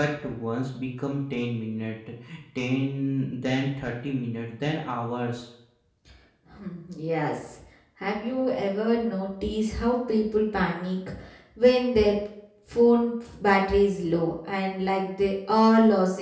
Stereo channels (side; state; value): both; identical; correlation 1.00